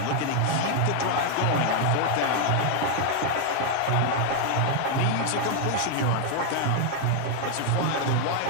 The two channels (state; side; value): different; both; correlation 0.00